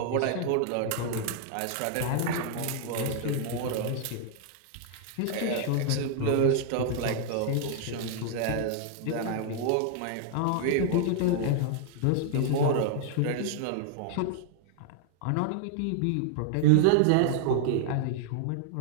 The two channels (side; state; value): both; different; correlation -0.01